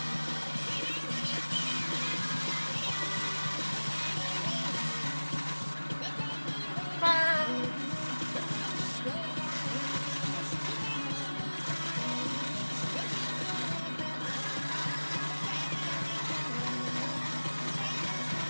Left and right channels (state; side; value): inverted; both; correlation -1.00